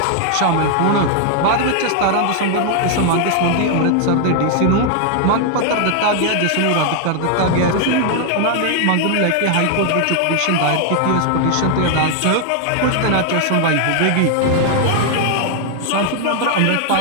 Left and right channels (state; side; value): different; both; correlation 0.00